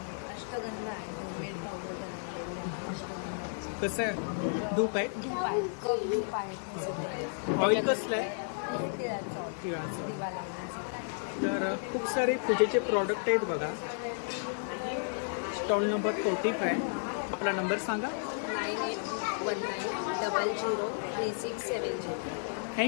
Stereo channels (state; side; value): silent; right; digital silence